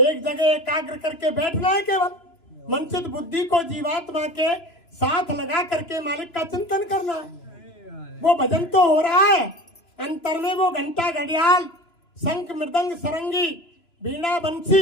जगह एकाग्र करके बैठना है। केवल मन से बुद्धि को जीवात्मा के साथ लगा करके मालिक का चिंतन करना है। वो भजन तो हो रहा है, अंतर में वो घंटा घड़ियाल शंख मृदंग सरंगी बीड़ा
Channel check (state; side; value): late; right; 3.0 ms